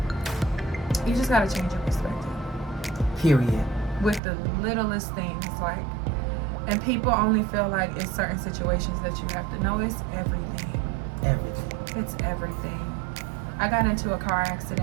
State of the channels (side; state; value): left; drops out; at 4.2 s